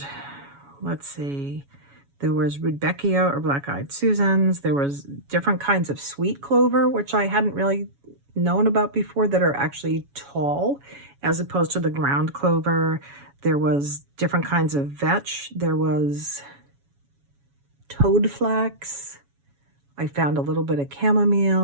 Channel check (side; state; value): left; late; 7.1 ms